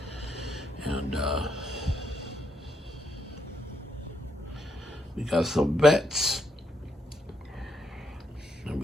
and we got some vets, and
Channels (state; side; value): normal; both; correlation 0.77